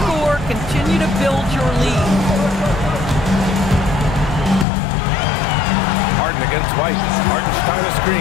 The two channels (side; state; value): right; drops out; at 4.7 s